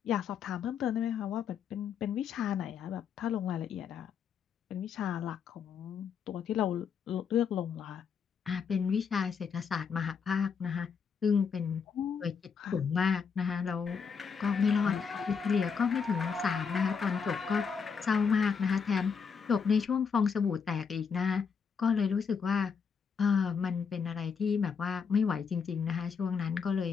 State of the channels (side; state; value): right; quieter; 6.3 dB